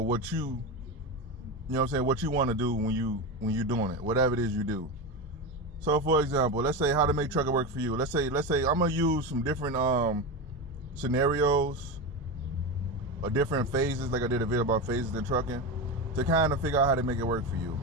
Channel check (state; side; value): normal; both; correlation 0.19